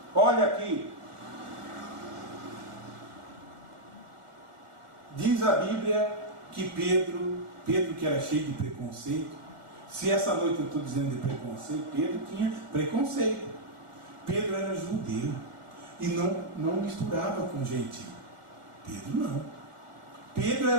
Olha aqui. Diz a Bíblia que Pedro que era cheio de preconceito, se essa noite eu estou dizendo de preconceito, Pedro tinha preconceito. Pedro era judeu e não misturava com gentio. Pedro não. Pedro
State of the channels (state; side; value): late; left; 1.4 ms